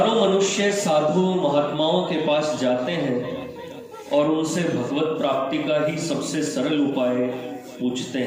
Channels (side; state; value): both; identical; correlation 1.00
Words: मनुष्य साधु महात्माओं के पास जाते हैं और उनसे भगवत प्राप्ति का ही सबसे सरल उपाय पूछते